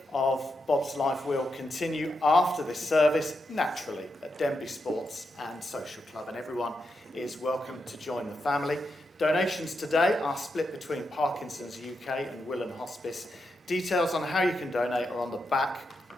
of Bob's life will continue after this service, naturally, at Denby Sports and Social Club, and everyone is welcome to join the family. Donations today are split between Parkinson's UK and Willen Hospice. Details on how you can donate are on the back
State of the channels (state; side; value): normal; both; correlation 0.85